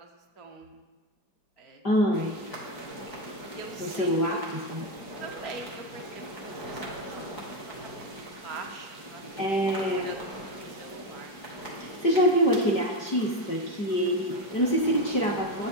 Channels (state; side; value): late; right; 5.1 ms